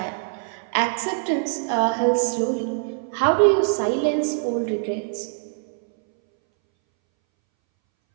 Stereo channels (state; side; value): silent; left; 62 dB below the other